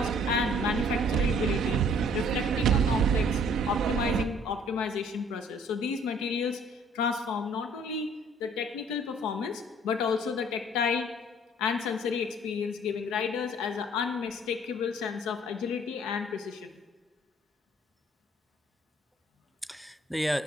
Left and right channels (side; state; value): both; normal; correlation 0.57